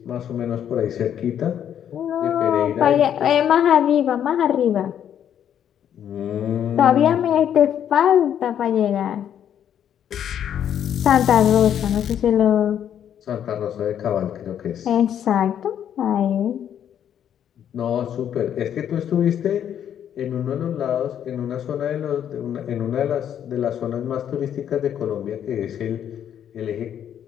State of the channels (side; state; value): right; quieter; 9.5 dB